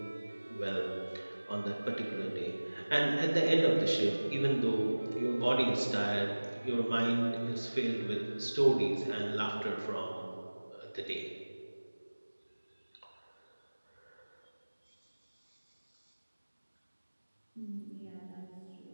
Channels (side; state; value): both; inverted; correlation -1.00